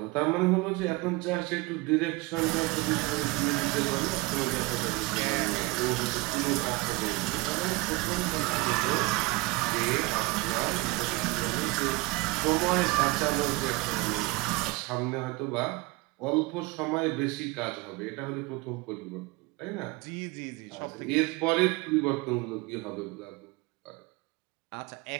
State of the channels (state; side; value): quieter; left; 22.7 dB